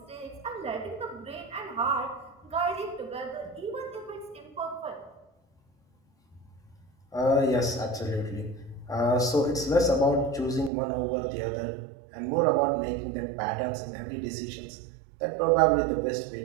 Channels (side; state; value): left; drops out; at 10.7 s